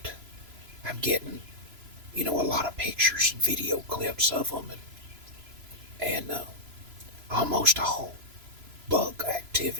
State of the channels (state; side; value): late; left; 3.0 ms